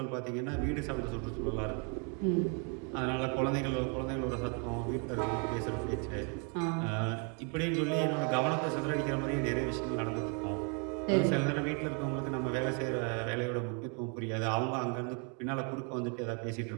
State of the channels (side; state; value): left; quieter; 37.7 dB